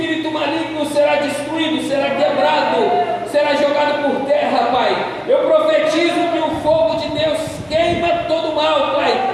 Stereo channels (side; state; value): both; identical; correlation 1.00